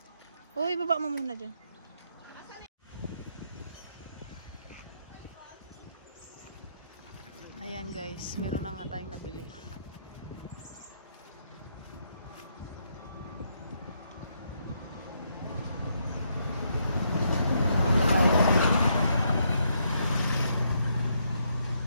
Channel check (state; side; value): inverted; both; correlation -0.76